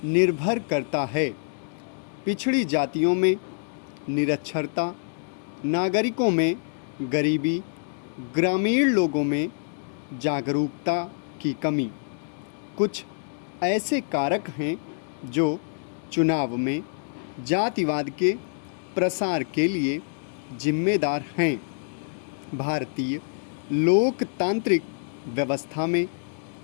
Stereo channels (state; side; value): silent; right; digital silence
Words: निर्भर करता है। पिछड़ी जातियों में निरक्षरता, नागरिकों में गरीबी, ग्रामीण लोगों में जागरूकता की कमी कुछ ऐसे कारक हैं जो चुनाव में जातिवाद के प्रसार के लिए जिम्मेदार हैं। भारतीय लोकतांत्रिक व्यवस्था में